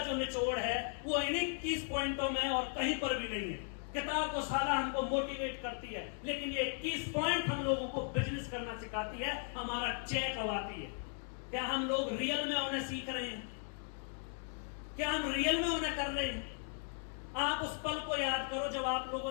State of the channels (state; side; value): silent; right; 53 dB below the other